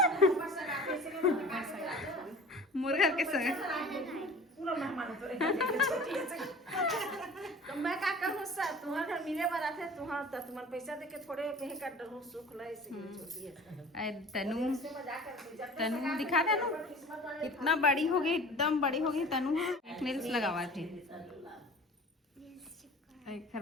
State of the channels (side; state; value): both; normal; correlation 0.42